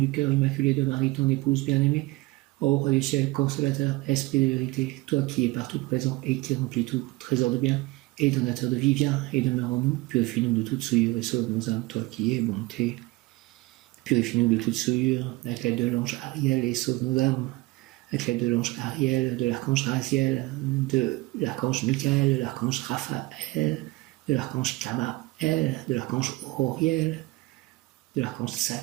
cœur immaculé de Marie, ton épouse bien-aimée, ô roi du ciel, consolateur, esprit de vérité, toi qui es partout présent et qui remplis tout, trésor de bien et donateur de vie, viens et demeure en nous, purifie-nous de toute souillure et sauve nos âmes, toi qui es bonté. Purifie-nous de toute souillure, avec l'aide de l'ange Ariel, et sauve nos âmes, avec l'aide de l'ange Ariel, de l'archange Raziel, de l'archange Michael, de l'archange Raphaël, de l'archange Kamaël, El, de l'archange Auriel, de l'archange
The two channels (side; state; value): left; quieter; 21.0 dB